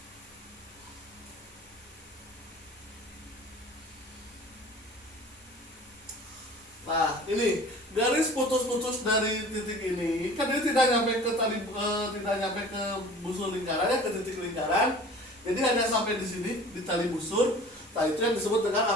Nah, ini garis putus-putus dari titik ini, kan dia tidak nyampe ke busur lingkaran, ya, ke titik lingkaran. Jadi hanya sampai di sini di tali busur. Nah, itu yang disebut dengan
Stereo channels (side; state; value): both; normal; correlation 0.44